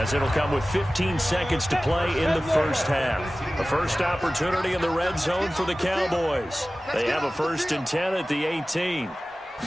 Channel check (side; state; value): both; normal; correlation 0.97